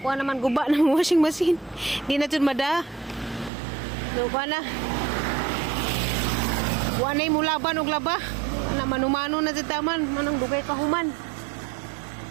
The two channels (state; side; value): drops out; left; at 3.5 s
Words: kuha naman guba ng washing machine. Di na jud mada. No kuha na. Wanay mo laban og laba. Na manumano na jud taman, manang dugay kahuman.